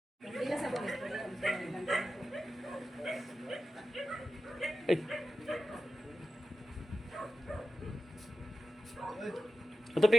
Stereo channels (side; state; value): both; normal; correlation 0.92